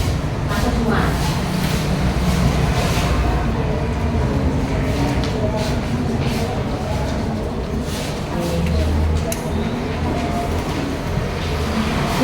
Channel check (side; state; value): both; identical; correlation 1.00